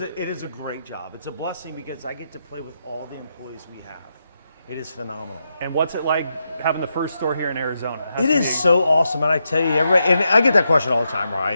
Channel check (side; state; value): both; inverted; correlation -0.84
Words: is a great job. It's a blessing because I get to play with all the employees we have. It is phenomenal. And what's it like having the first store here in Arizona? It is so awesome, and I tell you, everybody, and I get that question all the time,